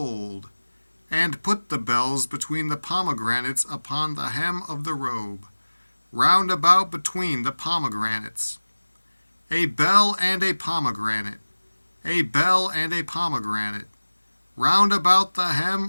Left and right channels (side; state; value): both; inverted; correlation -1.00